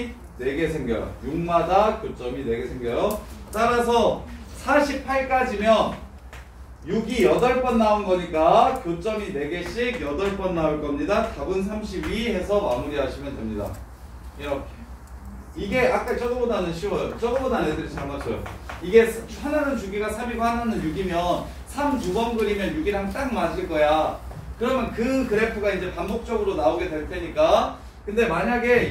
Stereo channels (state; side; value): identical; both; correlation 1.00